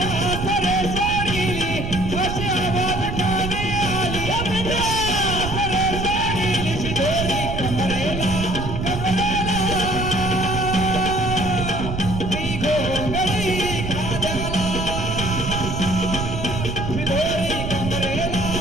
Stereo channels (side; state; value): right; noise; rumble, 4 dB below the sound